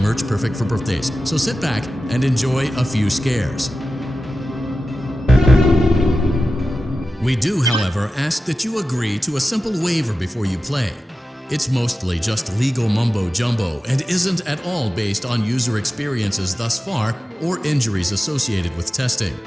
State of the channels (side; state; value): both; normal; correlation 0.93